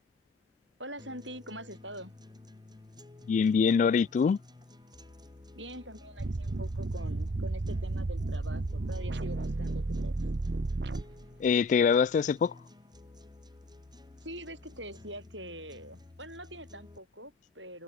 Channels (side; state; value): right; quieter; 3.5 dB